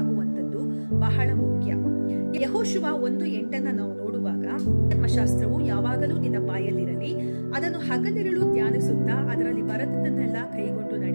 ಬಹಳ ಮುಖ್ಯ. ಯೆಹೋಶುವ 1:8 ನಾವು ನೋಡುವಾಗ, ಧರ್ಮಶಾಸ್ತ್ರವು ಯಾವಾಗಲೂ ನಿನ್ನ ಬಾಯಲ್ಲಿರಲಿ, ಅದನ್ನು ಹಗಲಿರುಳು ಧ್ಯಾನಿಸುತ್ತಾ ಅದರಲ್ಲಿ ಬರೆದದ್ದನ್ನೆಲ್ಲ ಕೈಗೊಂಡು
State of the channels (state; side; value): inverted; both; correlation -1.00